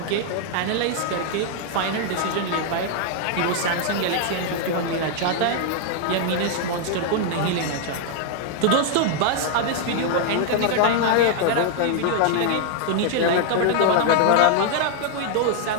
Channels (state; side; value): different; both; correlation 0.00